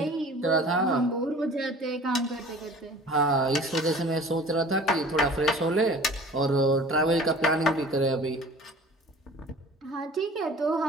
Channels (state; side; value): normal; both; correlation 0.45